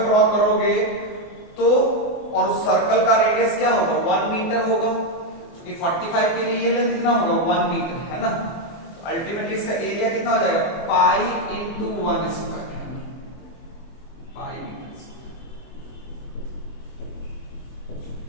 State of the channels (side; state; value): right; late; 24 ms